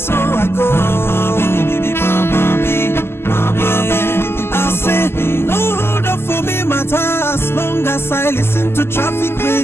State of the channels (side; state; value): right; late; 0.12 ms